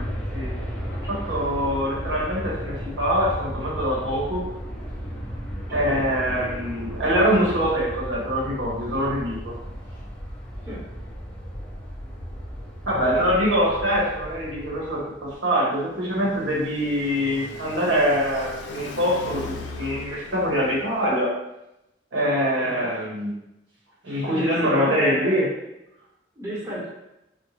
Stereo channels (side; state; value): both; normal; correlation 0.20